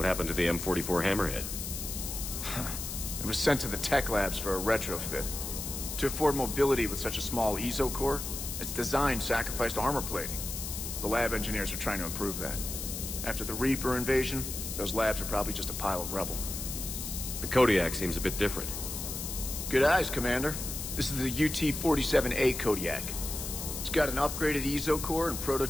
happened to the M44 Hammerhead? It was sent to the tech labs for a retrofit. To afford mobility with such a small ESO core, its design sacrificed armor plating. The lab engineers are trying to improve that. After the Reaper invasion, those labs are probably just a pile of rubble. The Kodiak seems a bit different. Good eyes, Commander. This is the UT-47A Kodiak. It's got an upgraded ESO core and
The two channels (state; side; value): noise; left; hiss, 6 dB below the sound